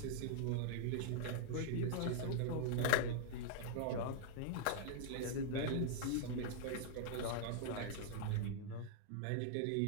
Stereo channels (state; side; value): different; both; correlation -0.01